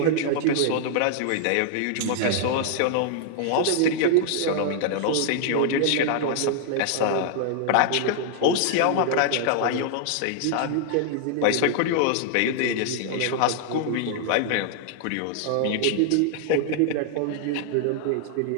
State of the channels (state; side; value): different; both; correlation 0.00